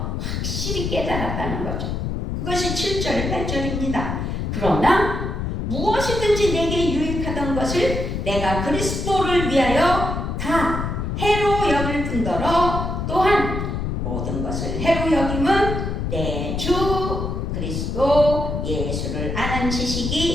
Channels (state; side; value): noise; left; rumble, 2 dB below the sound